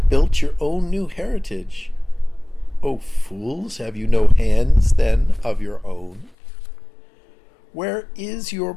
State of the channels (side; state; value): right; drops out; at 6.3 s